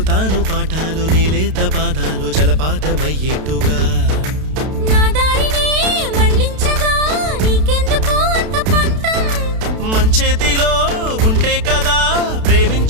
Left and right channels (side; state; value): left; late; 32 ms